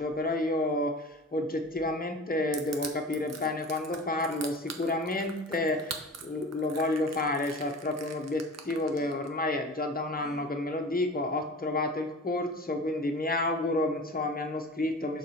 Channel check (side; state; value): both; normal; correlation 0.37